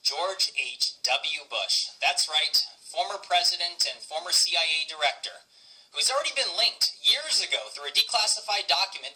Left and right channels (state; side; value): identical; both; correlation 1.00